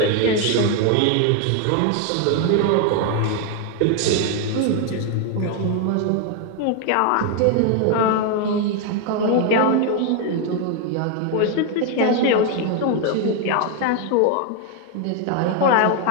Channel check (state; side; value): different; both; correlation 0.01